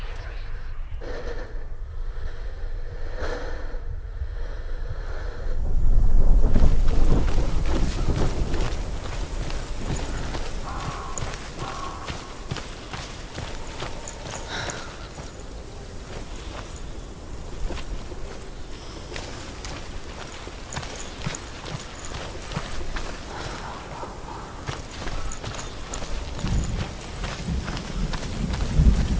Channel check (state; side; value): identical; both; correlation 1.00